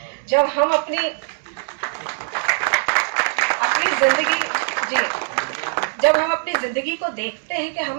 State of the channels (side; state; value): left; silent; digital silence